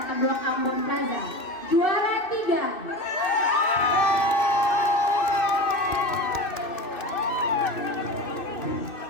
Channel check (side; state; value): right; late; 2.6 ms